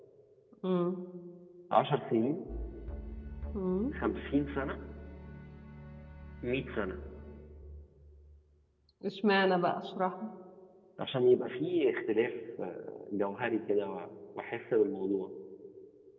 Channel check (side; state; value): both; identical; correlation 1.00